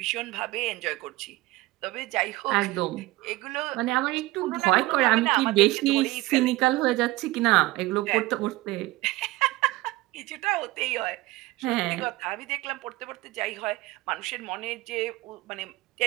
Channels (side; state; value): left; quieter; 19.3 dB